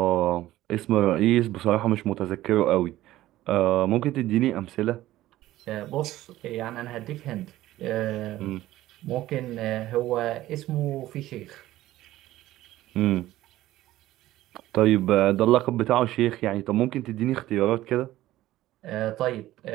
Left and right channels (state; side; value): quieter; left; 15.3 dB